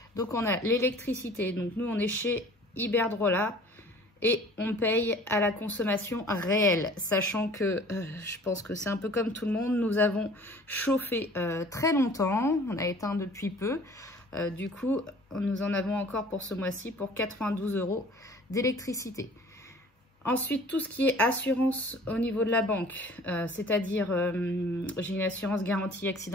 Donc, on a l'électricité. Donc, nous, on est chez Iberdrola et on paye à la consommation réelle. Sachant que, je pense que c'est un peu comme tout le monde, nous avons chauffé très longtemps. On a éteint depuis peu. Du coup, nous en avons encore pour ce mois-ci pour 92 € d'électricité. Ensuite, tout ce qui est assurance au niveau de la banque, c'est-à-dire j'ai une assurance garantie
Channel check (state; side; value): normal; both; correlation 0.49